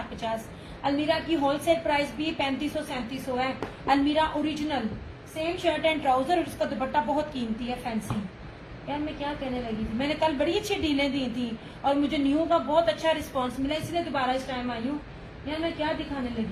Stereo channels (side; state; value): both; identical; correlation 1.00